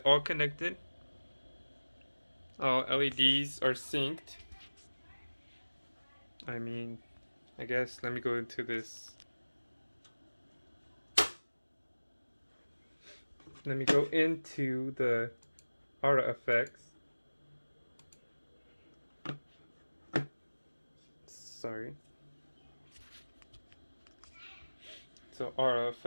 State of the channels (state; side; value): inverted; both; correlation -1.00